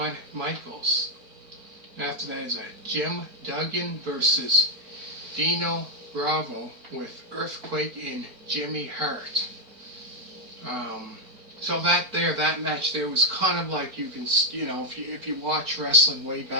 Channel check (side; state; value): left; late; 4.4 ms